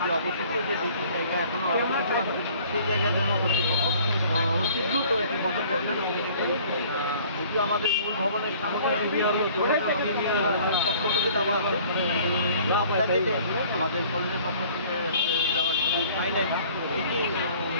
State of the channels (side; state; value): both; inverted; correlation -0.53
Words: অবশিষ্ট যে দুটি জায়গা এখনো সেই জায়গার জন্য কর্তৃপক্ষ অতি দ্রুত একটি পদক্ষেপ নেন। যেটি আমাদের মূল ভবনের সামনে পক্ষ থেকে দেওয়া হবে, আমাদের কলেজের পক্ষ থেকে দেওয়ার পাই নাই, এটি